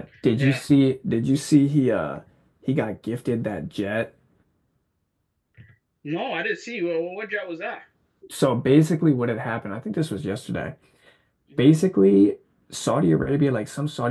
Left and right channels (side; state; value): both; identical; correlation 1.00